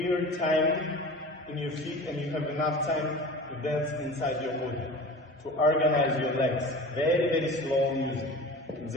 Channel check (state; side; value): normal; both; correlation 0.36